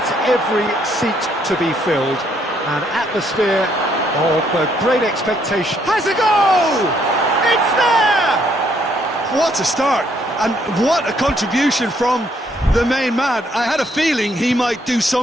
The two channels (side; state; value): both; normal; correlation 0.70